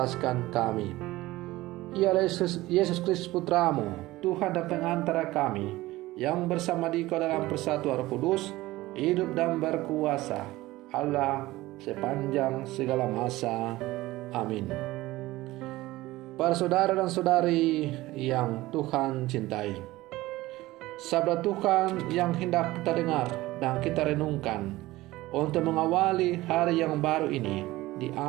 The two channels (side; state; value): left; quieter; 18.1 dB